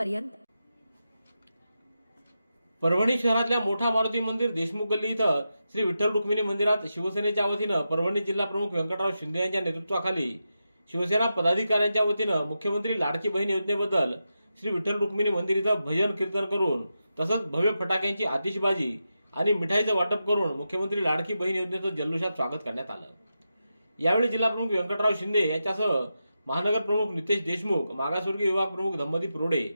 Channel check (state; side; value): inverted; both; correlation -0.89